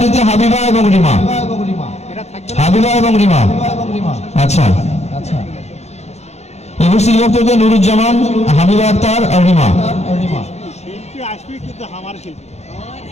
হাবিবা এবং রিমা। এটা থাকবে না। হাবিবা এবং রিমা। আচ্ছা, উপস্থিত বক্তব্য নুরুজ্জামান, হাবিবা আক্তার আর রিমা। শিল্পী আসবে কিন্তু আমার শিল্পী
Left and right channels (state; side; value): late; right; 0.32 ms